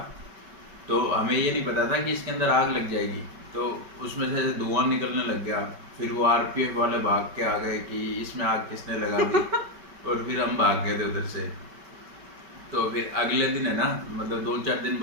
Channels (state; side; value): late; left; 5.2 ms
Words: तो हमें ये नहीं पता था कि इसके अंदर आग लग जाएगी। तो उसमें से धुआं निकलने लग गया। फिर वो आरपीएफ वाले भाग के आ गए कि इसमें आग किसने लगा दी। और फिर हम भाग गए थे उधर से। तो फिर अगले दिन है ना, मतलब 2-4 दिन